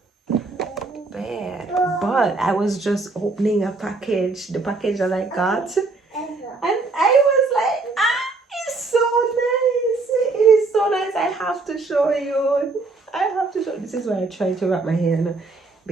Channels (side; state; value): left; quieter; 3.7 dB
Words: bad. But I was just opening a package, the package that I got. And I was like, it's so nice. It is so nice. I have to show you. This is why I try to wrap my hair now,